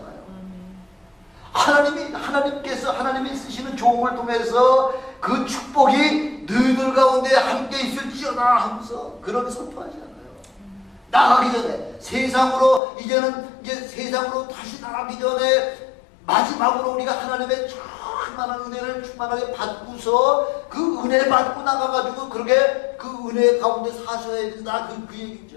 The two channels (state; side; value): drops out; right; at 12.8 s